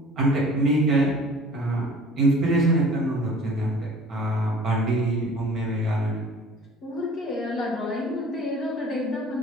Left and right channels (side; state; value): both; normal; correlation 0.48